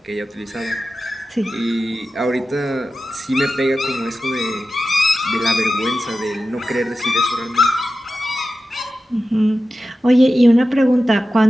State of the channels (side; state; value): both; normal; correlation 0.93